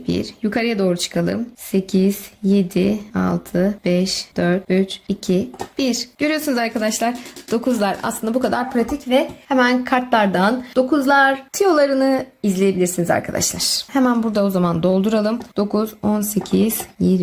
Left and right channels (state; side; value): identical; both; correlation 1.00